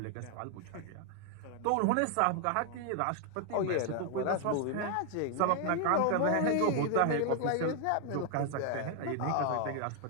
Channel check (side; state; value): both; different; correlation 0.00